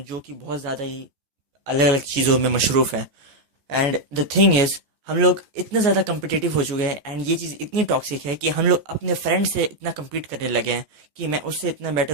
कि बहुत ज़्यादा ही अलग अलग चीज़ों में मशरूफ़ है। एंड द थिंग इज़, हम लोग इतने ज़्यादा कम्पिटिटिव हो चुके हैं एंड ये चीज़ इतनी टॉक्सिक है कि हम लोग अपने फ्रेंड से इतना कम्पीट करने लगे हैं कि मैं उससे इतना बेटर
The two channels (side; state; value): left; late; 14 ms